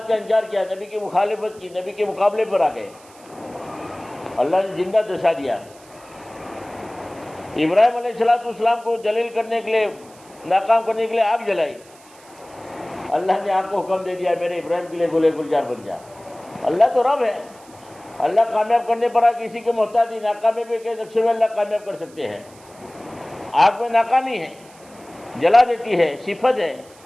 کا انکار کیا، نبی کی مخالفت کی، نبی کے مقابلے پر آ گئے. اللہ نے زندہ دسا دیا. ابراہیم علیہ السلام کو جلیل کرنے کے لیے، ناکام کرنے کے لیے آگ جلائی. اللہ نے آگ کو حکم دے دیا میرے ابراہیم کے لیے گلے گلزار بن جا. اللہ تو رب ہے. اللہ کامیاب کرنے پر کسی کے محتاج نہیں. ناکامی کے نقشے میں اللہ کامیاب کر سکتے ہیں. آگ میں ناکامی ہے، جلا دیتی ہے، صفت ہے.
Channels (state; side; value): noise; right; hiss, 25 dB below the sound